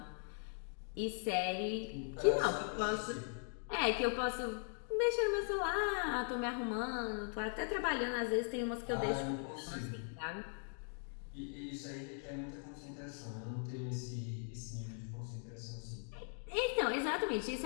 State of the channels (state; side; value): silent; right; 51 dB below the other